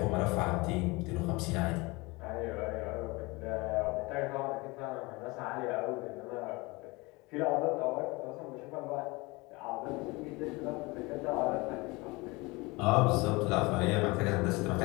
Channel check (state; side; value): quieter; right; 24.5 dB